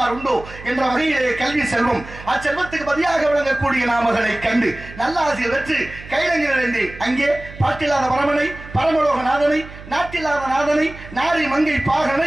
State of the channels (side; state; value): right; noise; hum, 16 dB below the sound